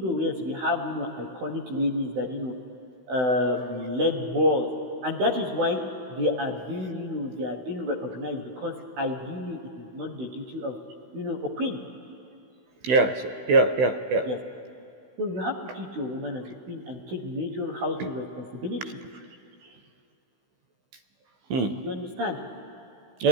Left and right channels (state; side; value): late; left; 16 ms